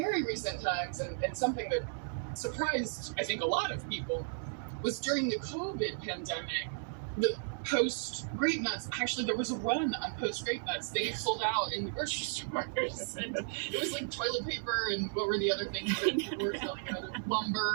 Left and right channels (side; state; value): left; silent; digital silence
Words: recent times, and something that surprised, I think, a lot of people, was during the COVID pandemic, the Post grape nuts, actually there was a run on Post grape nuts. They sold out in the grocery stores, and it was like toilet paper and what were the other things that were selling out?